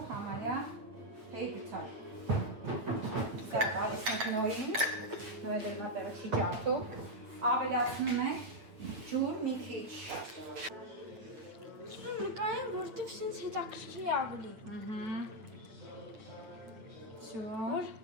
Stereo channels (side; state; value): left; late; 9.0 ms